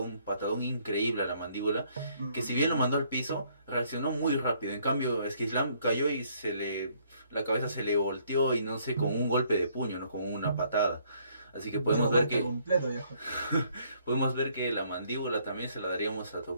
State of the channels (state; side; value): inverted; both; correlation -0.66